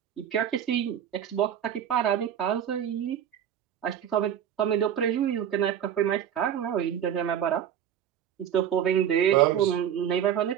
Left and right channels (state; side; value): quieter; left; 9.6 dB